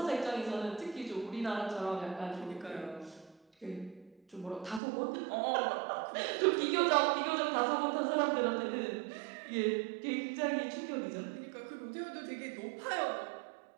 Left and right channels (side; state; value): left; drops out; at 4.8 s